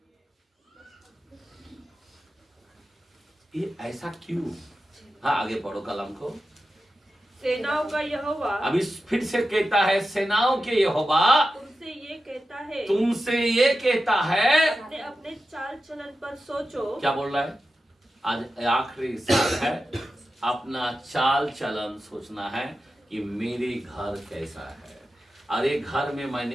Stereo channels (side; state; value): both; normal; correlation 0.92